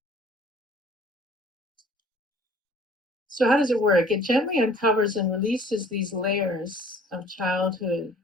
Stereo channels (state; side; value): normal; both; correlation 0.53